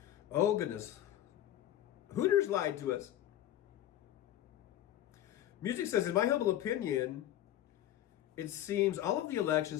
Oh, goodness. Hooters lied to us. Music says, in my humble opinion, it seems all of the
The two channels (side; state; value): right; quieter; 12.6 dB